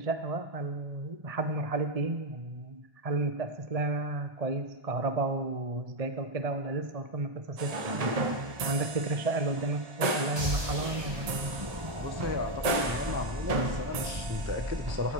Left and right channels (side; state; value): left; late; 1.7 ms